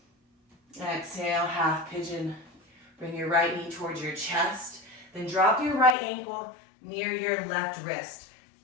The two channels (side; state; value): right; drops out; at 6.0 s